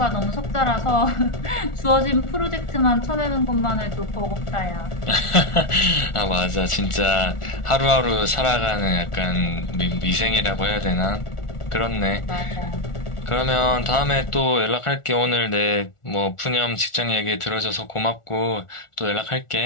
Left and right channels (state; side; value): late; right; 1.4 ms